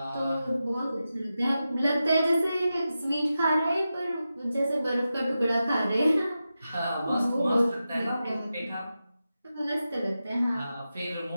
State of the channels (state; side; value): inverted; both; correlation -0.91